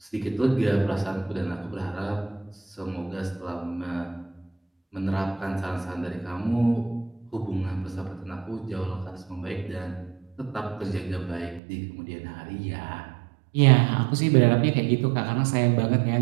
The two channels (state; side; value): drops out; left; at 11.6 s